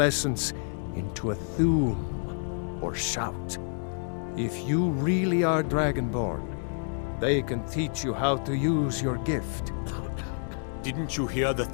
essence into a thum, or shout. If you really are Dragonborn, they can teach you how to use your gift. Didn't you hear the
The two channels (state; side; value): silent; right; 59 dB below the other